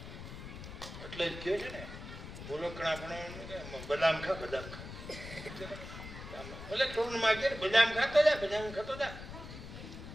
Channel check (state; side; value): noise; left; rumble, 11 dB below the sound